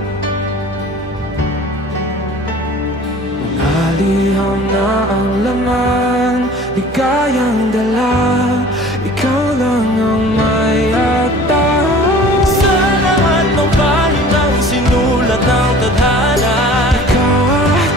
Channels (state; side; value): normal; both; correlation 0.45